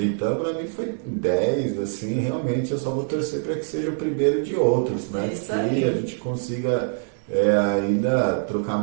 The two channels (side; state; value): left; silent; digital silence